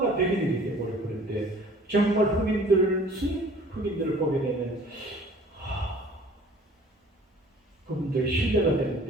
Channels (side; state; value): both; normal; correlation 0.51